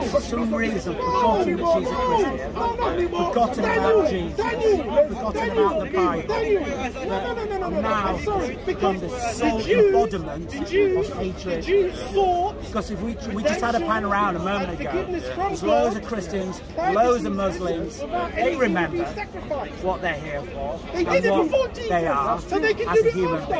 for some reason, forgotten that she's a Christian, forgotten about Jesus, forgotten about the Bible, but now has become the sole embodiment of hatred. Because if we just had a pan around a moment ago, there's loads of Christians, loads of Muslims, they remember what they're here for, and what they are as a human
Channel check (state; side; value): identical; both; correlation 1.00